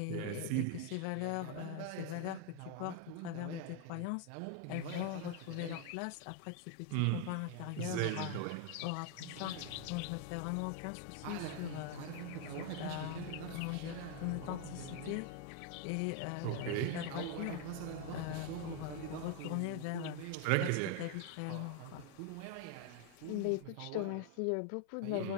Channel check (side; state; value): both; different; correlation 0.01